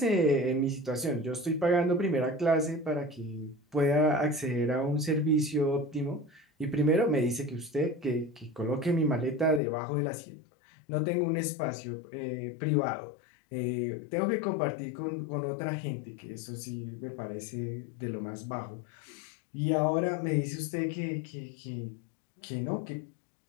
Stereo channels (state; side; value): drops out; right; at 9.6 s